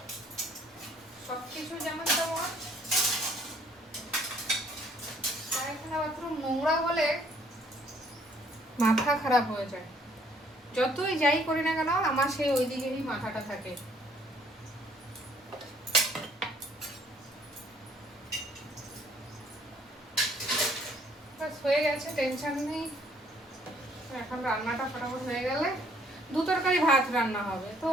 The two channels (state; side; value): normal; both; correlation 0.62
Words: সবকিছু যেমন তেমন, পায়খানা বাথরুম নোংরা হলে মাথা খারাপ হয়ে যায়। যতই যাই করি না কেন আমার সেই ওই দিকেরই মাথাটা থাকে। হয়ে গেছে, টেনশন নেই। এখন রান্নাটা ফটাফট হয়ে গেলে 2 তরকারি ভাত রান্না হবে, তো